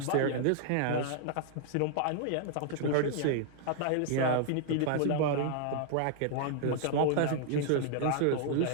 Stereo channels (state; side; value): different; both; correlation -0.01